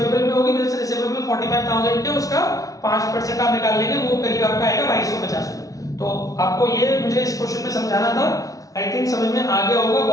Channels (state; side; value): late; right; 0.17 ms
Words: में होगी। बिल्स रिसीवेबल 45000 के, उसका 5% आप निकाल लेंगे, वो करीब आपका आएगा 2250 में। तो आपको ये मुझे इस क्वेश्चन में समझाना था, आई थिंक समझ में आ गया होगा,